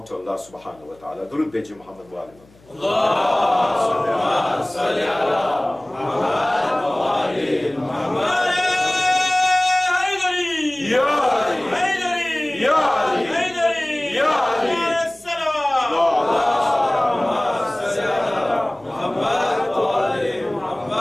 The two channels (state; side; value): noise; left; hum, 28 dB below the sound